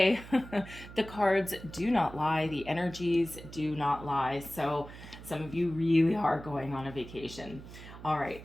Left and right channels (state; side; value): noise; right; hum, 15 dB below the sound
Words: the cards do not lie. The energies do not lie. So some of you really are going on a vacation. All